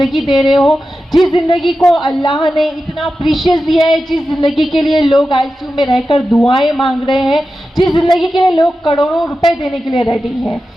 दे रहे हो। जिस ज़िंदगी को अल्लाह ने इतना प्रीशियस दिया है, जिस ज़िंदगी के लिए लोग ICU में रहकर दुआएं मांग रहे हैं, जिस ज़िंदगी के लिए लोग करोड़ों रुपए देने के लिए रेडी हैं,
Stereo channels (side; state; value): both; normal; correlation 0.92